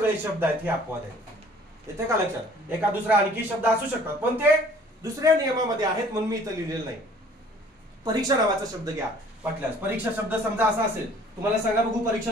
शब्द आहेत हे अपवाद आहेत. येते का लक्षात. एका दुसरा आणखी शब्द असू शकतात पण ते दुसऱ्या नियमामध्ये आहेत म्हणून मी इथं लिहिलेलं नाही. परीक्षा नावाचा शब्द घ्या वाटल्यास. परीक्षा शब्द समजा असा असेल, तुम्हाला सांगा बघू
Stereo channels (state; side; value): normal; both; correlation 0.53